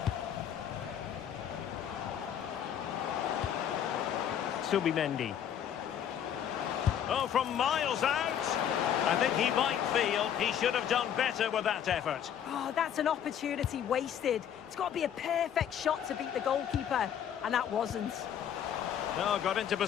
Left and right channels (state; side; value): quieter; right; 9.3 dB